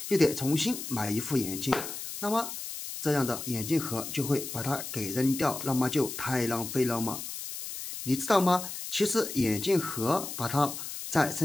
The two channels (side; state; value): left; noise; hiss, 8 dB below the sound